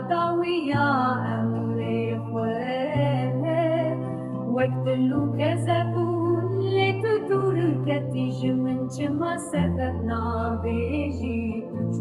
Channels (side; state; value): both; identical; correlation 1.00